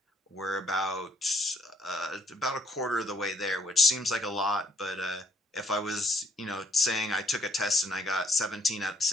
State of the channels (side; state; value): both; normal; correlation 0.67